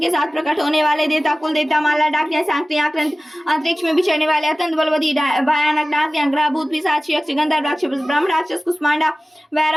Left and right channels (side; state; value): both; normal; correlation 0.97